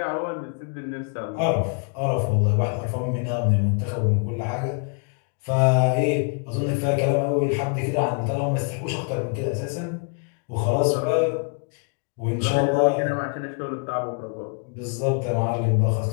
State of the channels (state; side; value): quieter; right; 38.4 dB